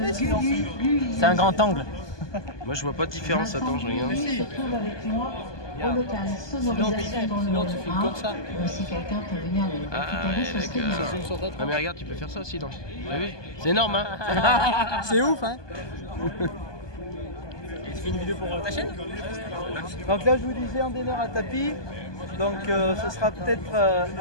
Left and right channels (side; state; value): right; late; 1.2 ms